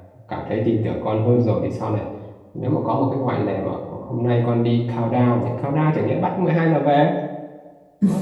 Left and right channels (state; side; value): identical; both; correlation 1.00